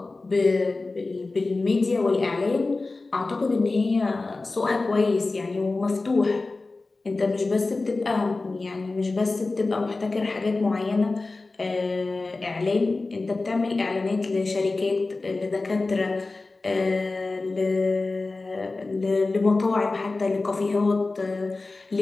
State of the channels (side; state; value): right; quieter; 3.5 dB